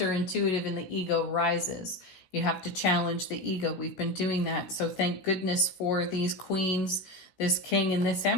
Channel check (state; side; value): late; right; 16 ms